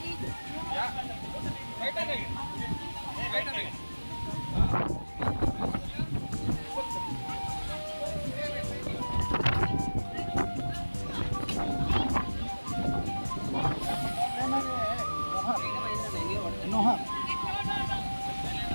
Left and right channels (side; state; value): both; inverted; correlation -1.00